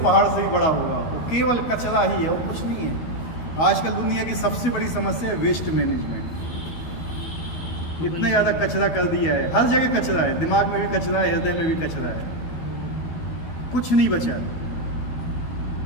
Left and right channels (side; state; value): right; late; 12 ms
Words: से ही बड़ा होगा, वो केवल कचरा ही है और कुछ नहीं है। आजकल दुनिया की सबसे बड़ी समस्या है वेस्ट मैनेजमेंट। इतना ज़्यादा कचरा कर दिया है, हर जगह कचरा है, दिमाग में भी कचरा है, हृदय में भी कचरा है, कुछ नहीं बचा।